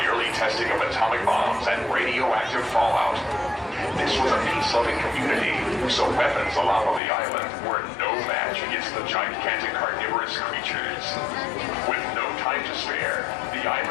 early testing of atomic bombs and radioactive fallout. This was a peace-loving community, so weapons allowed on the island were no match against the gigantic carnivorous creatures. With no time to spare, the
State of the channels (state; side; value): drops out; right; at 7.0 s